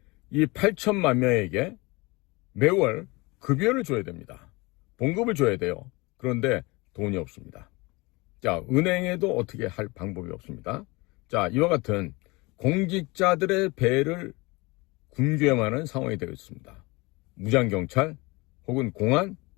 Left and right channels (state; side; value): quieter; right; 24.7 dB